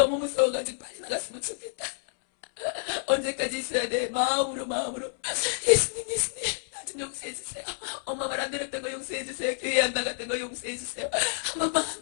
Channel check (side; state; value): right; silent; 59 dB below the other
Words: 무서워가지고 빨리 나갔으면 좋겠다. 언제까지 있어야 돼? 마음으로. 예수님, 나 좀 용서해주세요. 엄마 말 안 들었던 거 용서해주세요. 교회 안 나갔던 거 용서해주세요.